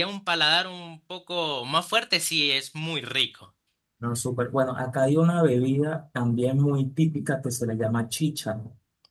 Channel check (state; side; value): identical; both; correlation 1.00